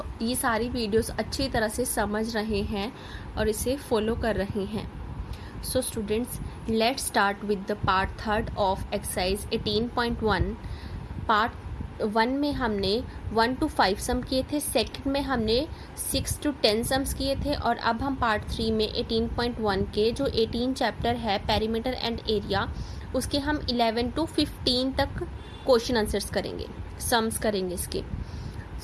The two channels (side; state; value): both; identical; correlation 1.00